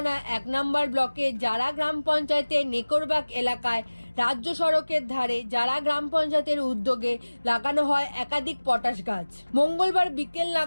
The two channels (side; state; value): both; inverted; correlation -1.00